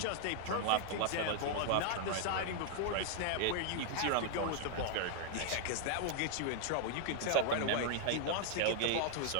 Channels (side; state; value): both; different; correlation 0.00